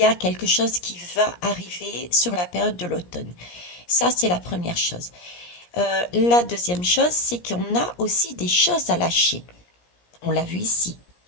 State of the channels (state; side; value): late; right; 17 ms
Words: a quelque chose qui va arriver sur la période de l'automne. Ça, c'est la première chose. La deuxième chose, c'est qu'on a aussi des choses à lâcher. On l'a vu ici.